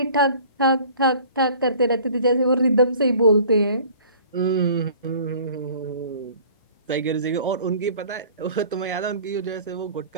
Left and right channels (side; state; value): both; inverted; correlation -0.49